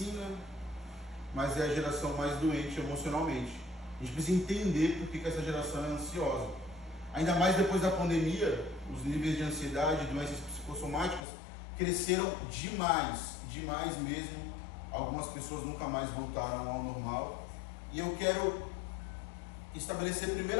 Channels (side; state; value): right; drops out; at 11.2 s